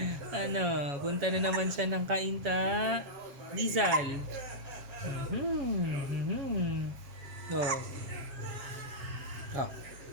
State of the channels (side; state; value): left; late; 7.4 ms